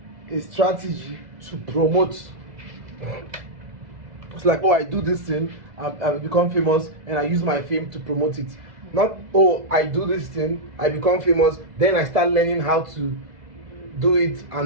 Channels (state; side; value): late; left; 2.0 ms